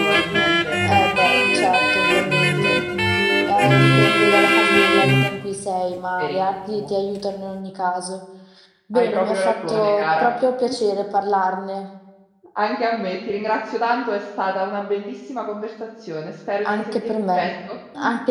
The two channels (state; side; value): identical; both; correlation 1.00